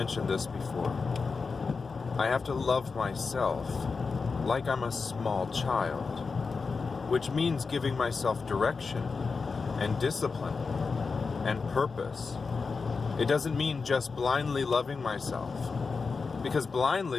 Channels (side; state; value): right; quieter; 4.7 dB